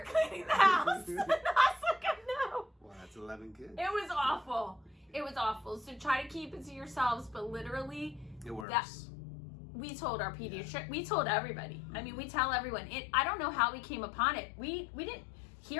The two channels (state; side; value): drops out; right; at 8.7 s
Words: cleaning the house. And I was like, I know. Well, that's 11 kids. It was awful. It was awful. So try to keep it to yourselves, but literally, it works. We told our pediatrician, we told everybody. I mean, we tell everyone. I don't know how we came upon it. We didn't